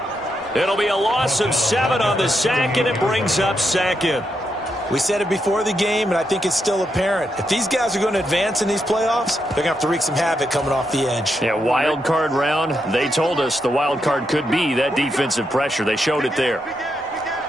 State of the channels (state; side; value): normal; both; correlation 0.82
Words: It'll be a loss of 7 on the sack, and it brings up 2nd. We said it before the game, and I think it's still apparent. If these guys are going to advance in these playoffs, they're going to have to wreak some havoc coming off the edge. Yeah, wild card round. They told us the wild card could be that defensive pressure. They showed it there.